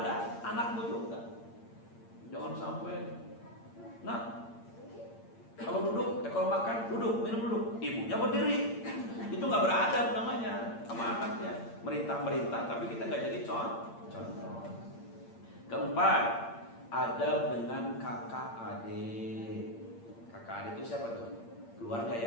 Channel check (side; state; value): right; late; 8.7 ms